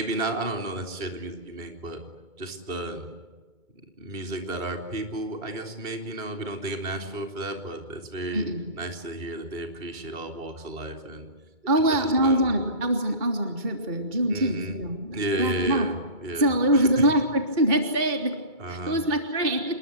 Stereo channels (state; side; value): late; left; 2.2 ms